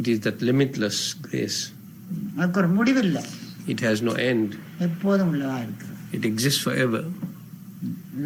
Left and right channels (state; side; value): identical; both; correlation 1.00